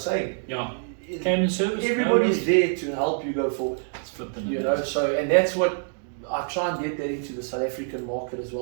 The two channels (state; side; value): silent; left; digital silence